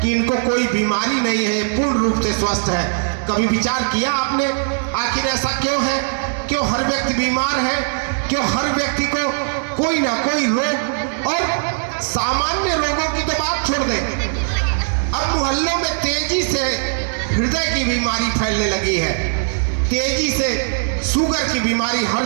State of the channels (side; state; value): left; silent; digital silence